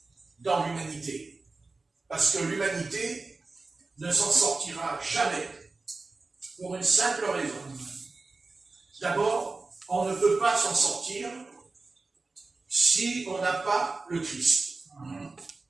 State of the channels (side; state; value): left; quieter; 3.6 dB